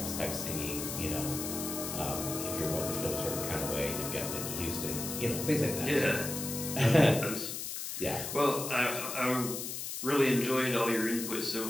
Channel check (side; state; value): left; noise; hiss, 5 dB below the sound